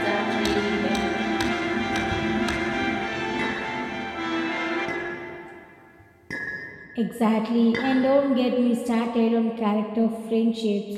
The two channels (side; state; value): both; identical; correlation 1.00